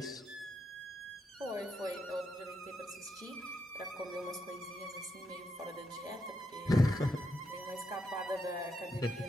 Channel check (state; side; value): normal; both; correlation 0.81